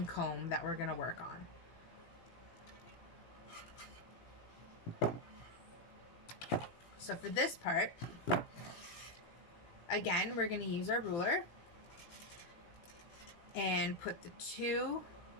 comb that we're going to work on. So for this part, again, we're going to use our ruler and put the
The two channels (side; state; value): right; late; 18 ms